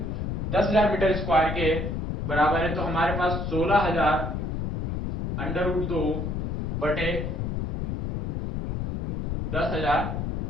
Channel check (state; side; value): noise; left; rumble, 1 dB below the sound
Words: 10,000 मीटर स्क्वायर के बराबर है तो हमारे पास 16,000 √2 बटे 10,000